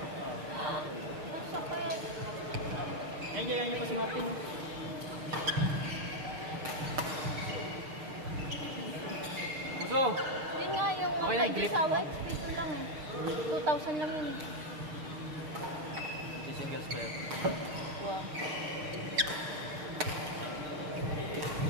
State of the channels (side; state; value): left; late; 6.6 ms